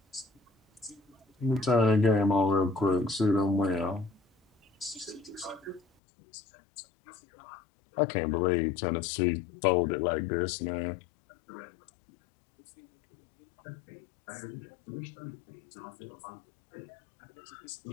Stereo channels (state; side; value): drops out; right; at 5.8 s